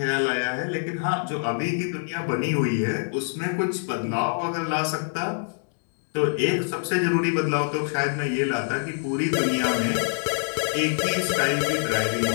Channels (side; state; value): right; silent; digital silence